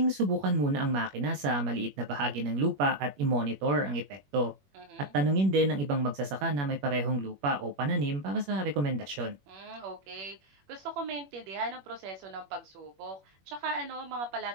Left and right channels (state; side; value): late; left; 21 ms